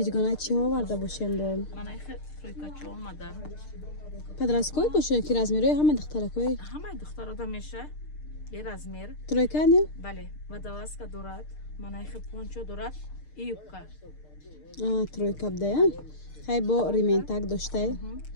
чӣ оварда бошем бо? Манай тройкачо омада. Подросткой бошем ки размери ҳама духтаракой? Ҳамаи духтарода меша. Бе размер. Тройка не? Бале. Водолазка дорад. Манай пончо дорад. И юбка. Тройка бдая. Хай бо рементак доштай.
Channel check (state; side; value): late; right; 6.6 ms